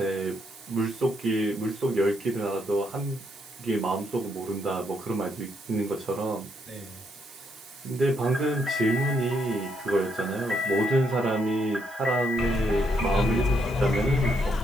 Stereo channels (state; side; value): noise; right; hiss, 21 dB below the sound